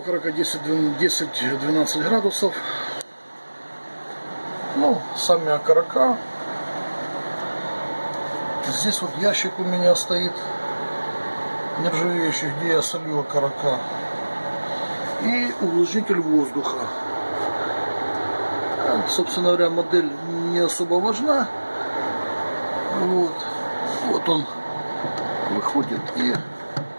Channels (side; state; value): both; inverted; correlation -1.00